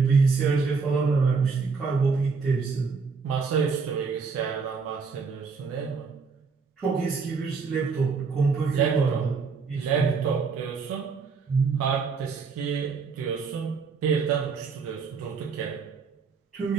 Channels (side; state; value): left; quieter; 5.1 dB